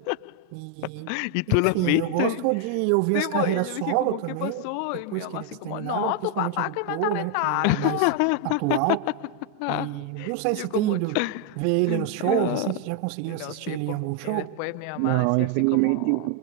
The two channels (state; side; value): different; both; correlation 0.01